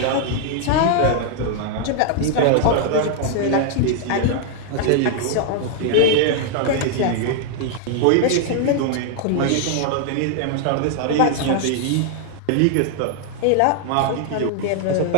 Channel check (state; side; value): different; both; correlation 0.00